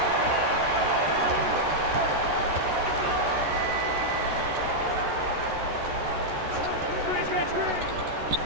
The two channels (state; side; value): late; left; 13 ms